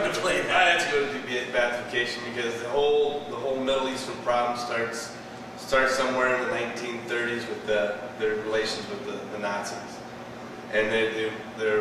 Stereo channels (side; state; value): both; identical; correlation 1.00